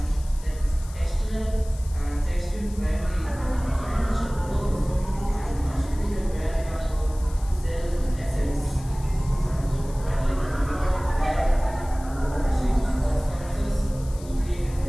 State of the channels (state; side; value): noise; left; hiss, 20 dB below the sound